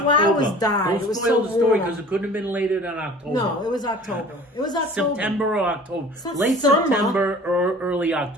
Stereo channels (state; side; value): normal; both; correlation 0.46